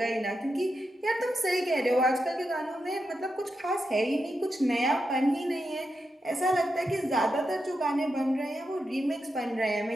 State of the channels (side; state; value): both; normal; correlation 0.87